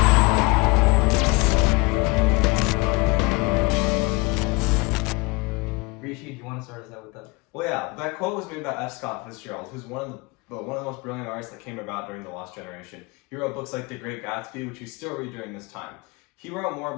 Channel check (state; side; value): quieter; right; 25.6 dB